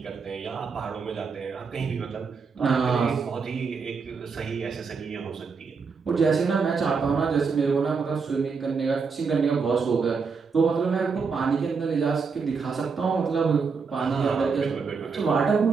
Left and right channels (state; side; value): quieter; left; 5.2 dB